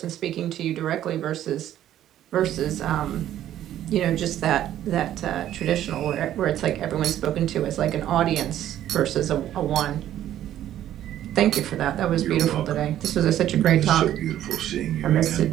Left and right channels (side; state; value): left; quieter; 12.0 dB